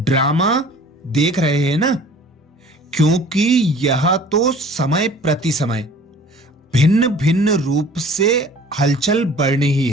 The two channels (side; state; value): both; normal; correlation 0.48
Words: देख रहे हैं ना, क्योंकि यह तो समय प्रति समय भिन्न भिन्न रूप से हलचल बढ़नी ही